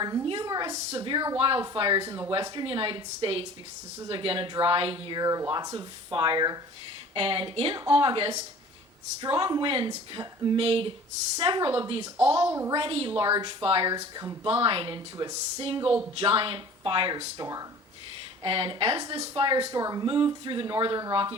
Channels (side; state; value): both; normal; correlation 0.45